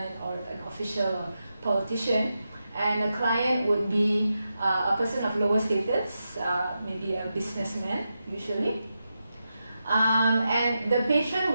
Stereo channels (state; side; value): inverted; both; correlation -0.88